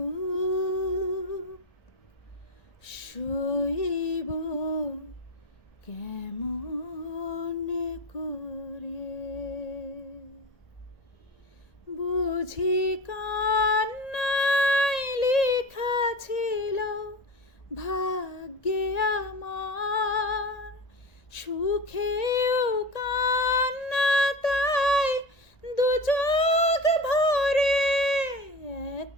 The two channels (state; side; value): late; right; 1.8 ms